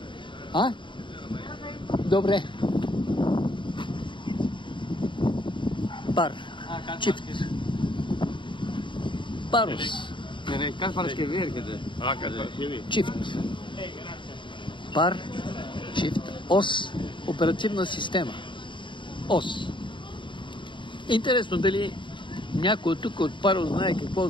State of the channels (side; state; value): right; late; 0.23 ms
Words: А? Добре. Пар. Чифт. Парус. Чифт. Пар. Чифт. Ос. Оперативна система. Ос. Интересно дали някой тук от Парус знае какво